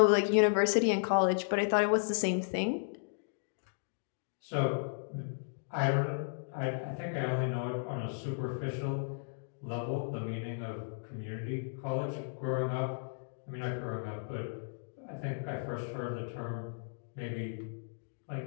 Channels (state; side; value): silent; right; digital silence